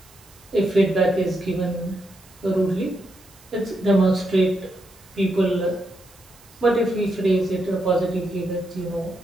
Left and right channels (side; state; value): right; noise; hiss, 26 dB below the sound